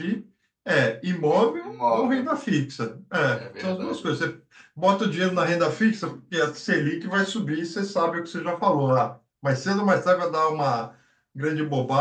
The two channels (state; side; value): identical; both; correlation 1.00